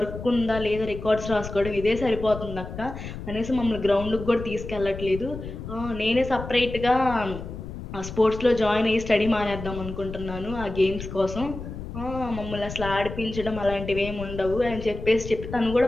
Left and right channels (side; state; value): left; noise; rumble, 9 dB below the sound